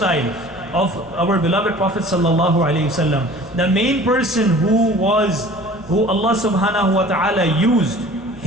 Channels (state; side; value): noise; left; hum, 22 dB below the sound